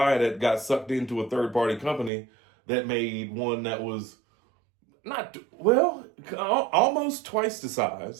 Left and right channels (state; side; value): drops out; left; at 2.1 s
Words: that got sucked into a third-party company that made one that was almost twice the